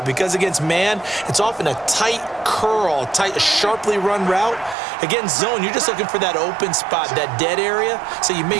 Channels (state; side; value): drops out; left; at 4.8 s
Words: because against man, it's often a tight curl, a sharply run route. Against zone, you're just looking for that open spot, that dead area, so you may